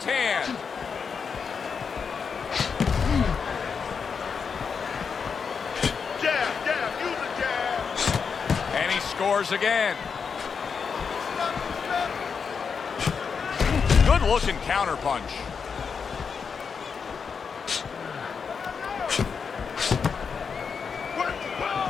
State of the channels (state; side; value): quieter; right; 6.0 dB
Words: hand. Jab, use a jab. And he scores again. Good looking counter punch.